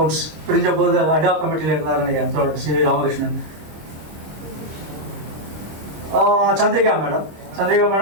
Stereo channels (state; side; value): late; left; 26 ms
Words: பிரிஞ்ச போது அடாக் கமிட்டியில் இருந்தார் நினைக்கிறேன் C Ramakrishnan. Chandrika